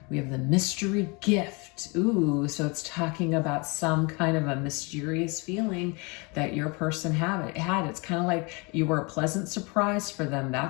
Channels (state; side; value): quieter; right; 29.3 dB